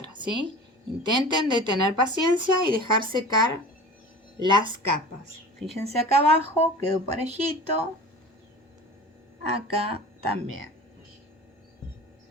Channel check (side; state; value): both; normal; correlation 0.38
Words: ¿sí? Intenten de tener paciencia y dejar secar las capas. Fíjense acá abajo, quedó parejito. Acá también.